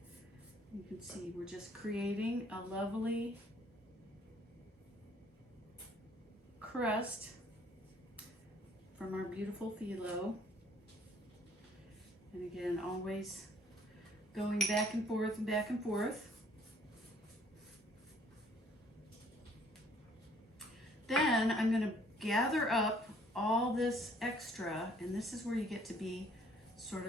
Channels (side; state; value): both; normal; correlation 0.60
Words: You can see we're just creating a lovely crust from our beautiful filo. And again, always going back and forth and back and forth. Then I'm going to gather up all this extra, and this is where you get to be sort